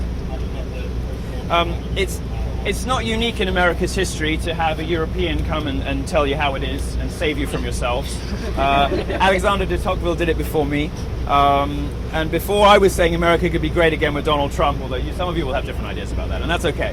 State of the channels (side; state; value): both; identical; correlation 1.00